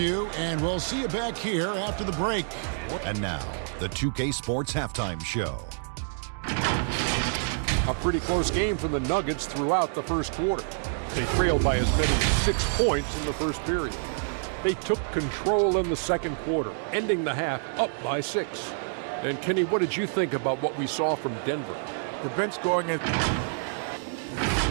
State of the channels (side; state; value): left; silent; digital silence